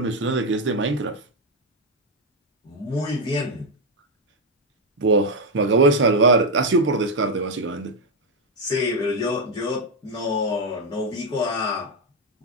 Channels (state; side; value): normal; both; correlation 0.04